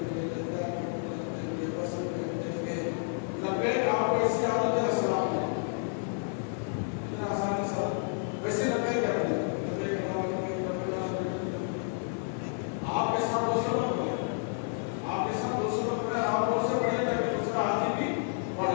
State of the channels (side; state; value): right; silent; 58 dB below the other